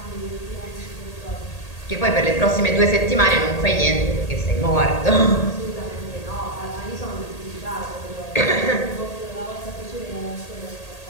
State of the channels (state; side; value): late; right; 1.8 ms